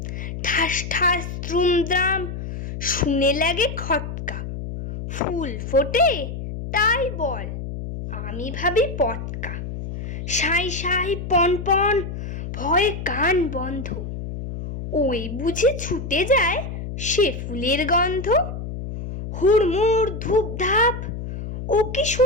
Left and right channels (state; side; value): noise; left; hum, 7 dB below the sound